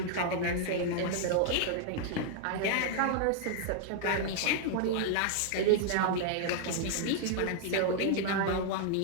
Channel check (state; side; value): different; both; correlation 0.00